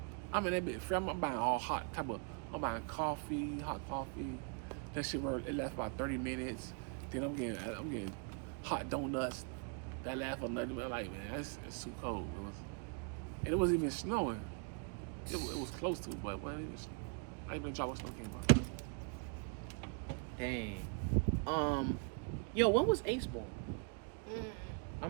I'm in that bit free. I'm buying all hot type of. I'm buying coffee, hot coffee. That shit it lasts about 30 minutes. Then I'm getting hot donuts. That lasts for nothing. I'm like, man, it's too cold, bro. And it wasn't even snowing. It was close to it, but I even dropped what snow came out. Dang. Yo, when was Ace born? I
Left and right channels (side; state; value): left; quieter; 36.6 dB